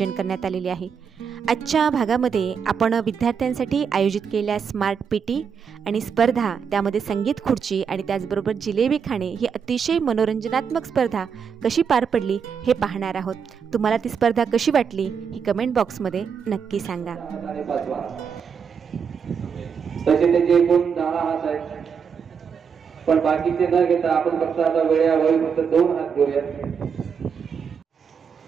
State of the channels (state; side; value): quieter; left; 6.6 dB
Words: करण्यात आलेले आहे। आजच्या भागामध्ये आपण विद्यार्थ्यांसाठी आयोजित केलेल्या स्मार्ट पीटी आणि स्पर्धा, त्यामध्ये संगीत खुर्ची आणि त्याचबरोबर जिलेबी खाणे ही अतिशय मनोरंजनात्मक स्पर्धा कशी पार पडली हे पाहणार आहोत। तुम्हाला ती स्पर्धा कशी वाटली हे कमेंट बॉक्समध्ये नक्की सांगा। तसे त्याचे एकूण 10 हात आहेत, पण बाकीचे न घेता आपण फक्त आता वेळेअभावी फक्त 2 हात घेऊया।